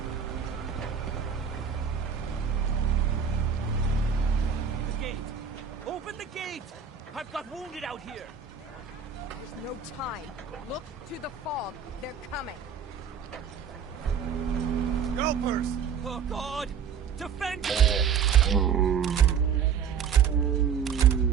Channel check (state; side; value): quieter; left; 7.3 dB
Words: Open the gate! I've got wounded out here! There's no time. Look to the fog. They're coming. Scalpers! Oh, God! Defend!